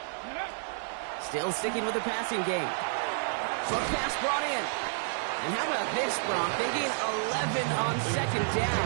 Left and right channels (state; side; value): silent; left; 58 dB below the other